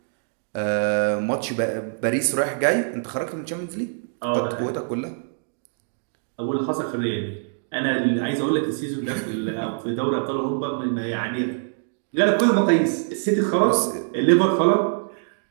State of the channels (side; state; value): left; silent; digital silence